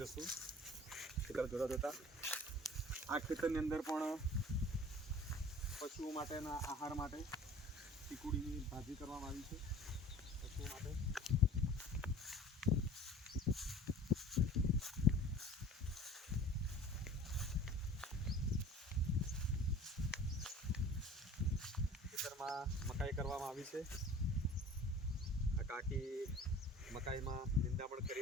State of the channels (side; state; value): both; normal; correlation 0.44